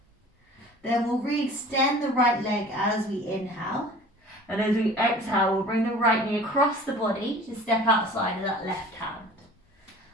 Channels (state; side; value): normal; both; correlation 0.45